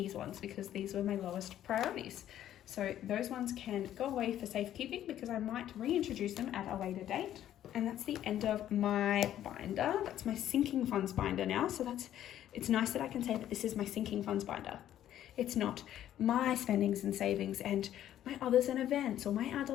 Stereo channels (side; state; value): right; quieter; 11.7 dB